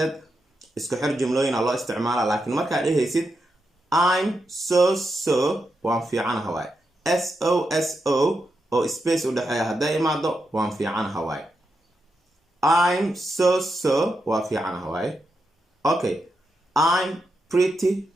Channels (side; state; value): both; normal; correlation 0.85